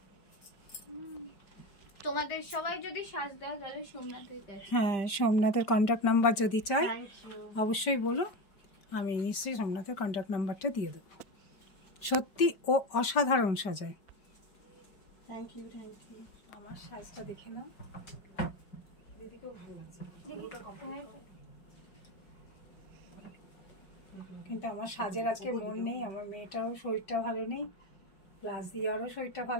তোমাদের সবাই যদি সাজ দাও তাহলে সোমনাথের কাছে। হ্যাঁ, সোমনাথের কন্ট্যাক্ট নাম্বার যদি চাই অবশ্যই বলো, আমি নিশ্চয়ই সোমনাথের কন্ট্যাক্ট নাম্বারটা দিয়ে দেবো। সত্যি ও অসাধারণ সাজায়। Thank you, thank you. আমার সাজটা দেখে নাও, দিদিকেও ভালো লাগছে। কিন্তু আমার সাজের আজকে মন নেই, আমার মেয়েটাও শরীরটা ভালো নেই, প্লাস দিয়ারও শরীরটা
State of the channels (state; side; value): late; right; 5.2 ms